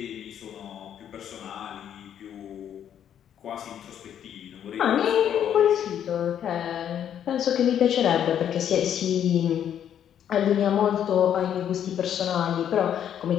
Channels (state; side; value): quieter; right; 9.6 dB